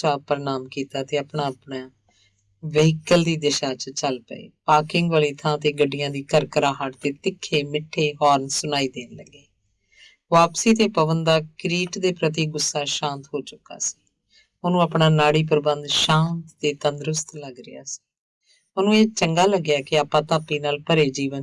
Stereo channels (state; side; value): identical; both; correlation 1.00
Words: ਪ੍ਰਣਾਮ ਕੀਤਾ ਤੇ ਆਪਣਾ ਆਪਣਾ ਵਹੀਕਲ ਦੀ ਦਿਸ਼ਾ 'ਚ ਚੱਲ ਪਏ। ਪਾਰਕਿੰਗ ਵਾਲੀ ਥਾਂ ਤੇ ਗੱਡੀਆਂ ਦੀ ਕਰਕਰਾਹਟ ਤੇ ਤਿੱਖੇ ਮਿੱਠੇ ਹੌਰਨ ਸੁਣਾਈ ਦੇਣ ਲੱਗੇ। ਵਾਪਸੀ ਤੇ ਪਵਨ ਦਾ ਕਿਰੀਟ ਦੇ ਪ੍ਰਤੀ ਗੁੱਸਾ ਸ਼ਾਂਤ ਹੋ ਚੁੱਕਾ ਸੀ। ਉਹਨੂੰ ਆਪਣਾ ਨਾੜੀ ਪ੍ਰਬੰਧ ਸ਼ਾਂਤ ਤੇ ਤੰਦਰੁਸਤ ਲੱਗ ਰਿਹਾ ਸੀ। ਉਹਨੂੰ ਇਹ ਚੰਗਾ ਲੱਗਿਆ ਕਿ ਆਪਾਂ ਧਾਪੀ ਨਾਲ ਭਰੇ